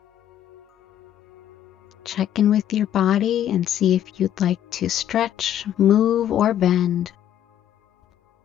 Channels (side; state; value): right; quieter; 10.9 dB